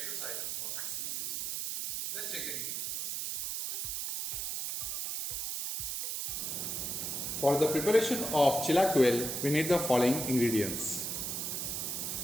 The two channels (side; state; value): right; noise; hiss, 2 dB below the sound